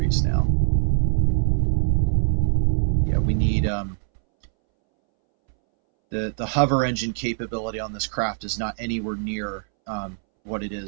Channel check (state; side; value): silent; left; 63 dB below the other